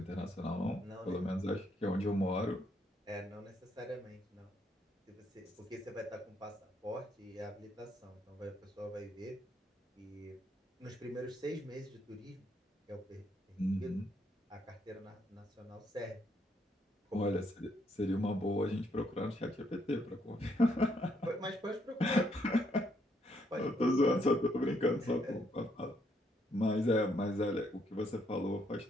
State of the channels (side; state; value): both; normal; correlation 0.73